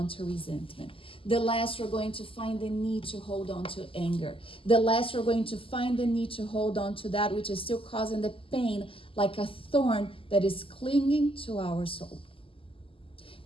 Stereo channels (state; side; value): late; right; 0.26 ms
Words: to resentment. The less we're going to find the need to hold on to anger. The less we're going to find the need to hold on to that which is still causing the pain like a thorn that is clinging to our soul.